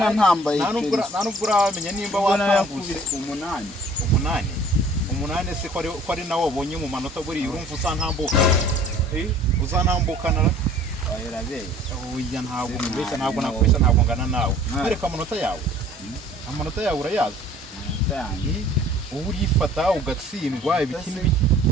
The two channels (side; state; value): both; normal; correlation 0.52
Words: ntambaye nta nubwo uramenya nimba watambutse umunani se ko ari nawe wabonye mu manota buriya urumva usantambuka uzantambukana oya ntabwo mbeshya ntabwo nakubeshya ntabwo ngana nawe ariko amanota yawe urayazi ubu urifata ugatsindwa ibiki n'ibiki